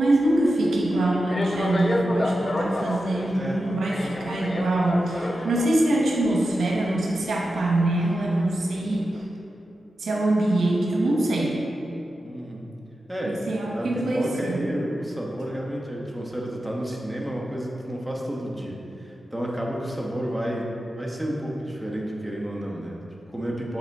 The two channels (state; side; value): normal; both; correlation 0.91